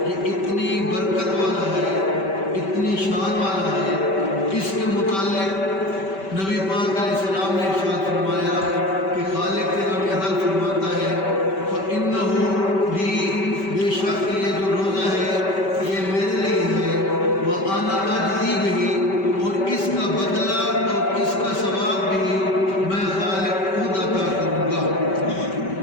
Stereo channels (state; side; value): late; right; 5.2 ms